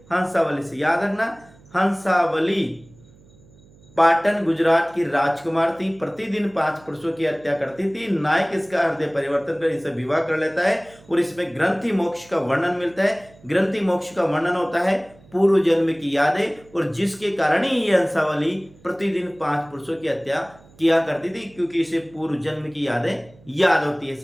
हंसावली से। याद रखना, हंसावली पाटन गुजरात की राजकुमार थी, प्रतिदिन 5 पुरुषों की हत्या करती थी। नायक इसका हृदय परिवर्तन कर इनसे विवाह कर लेता है और इसमें ग्रंथि मोक्ष का वर्णन मिलता है। ग्रंथि मोक्ष का वर्णन होता है पूर्व जन्म की यादें, और जिसके कारण ही ये हंसावली प्रतिदिन 5 पुरुषों की हत्या किया करती थी, क्योंकि इसे पूर्व जन्म की यादें याद होती है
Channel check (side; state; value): right; noise; hum, 26 dB below the sound